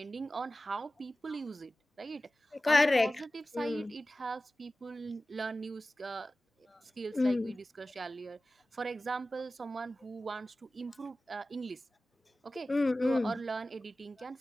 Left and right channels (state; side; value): normal; both; correlation 0.95